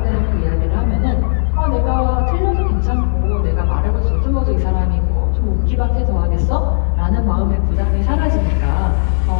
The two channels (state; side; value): silent; right; digital silence